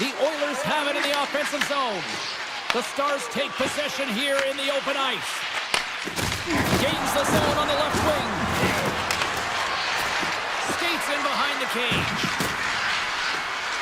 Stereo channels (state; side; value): identical; both; correlation 1.00